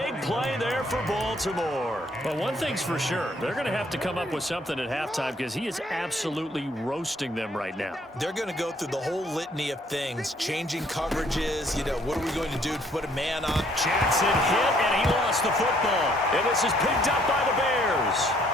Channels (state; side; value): normal; both; correlation 0.65